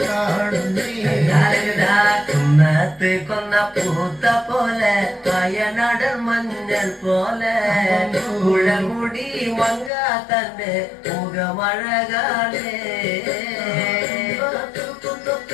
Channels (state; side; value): drops out; right; at 9.9 s